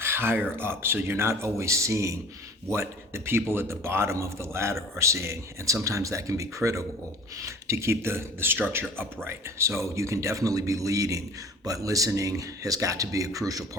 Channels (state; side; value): normal; both; correlation 0.44